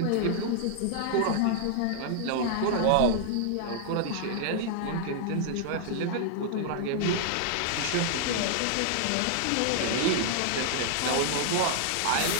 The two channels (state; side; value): different; both; correlation -0.01